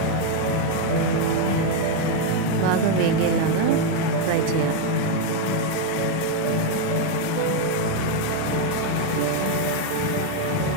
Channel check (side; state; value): both; different; correlation 0.01